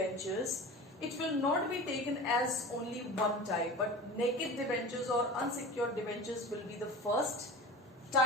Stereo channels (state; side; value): normal; both; correlation 0.34